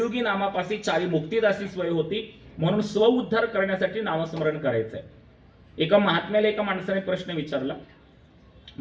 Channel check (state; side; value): identical; both; correlation 1.00